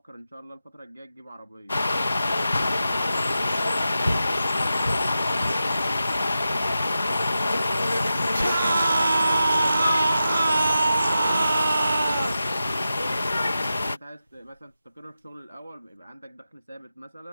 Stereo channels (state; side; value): inverted; both; correlation -0.91